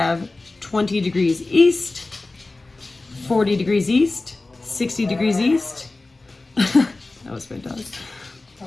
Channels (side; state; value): right; quieter; 3.2 dB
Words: 20 degrees east, 40 degrees east, 60 degrees east. That was my dog.